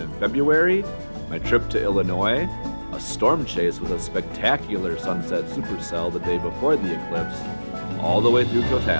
February, my trip to Illinois, a storm chase with a spectacular sunset supercell the day before the eclipse, all the way through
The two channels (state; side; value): inverted; both; correlation -1.00